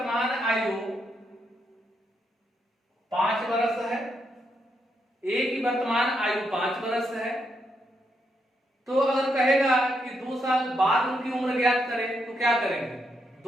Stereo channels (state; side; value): normal; both; correlation 0.80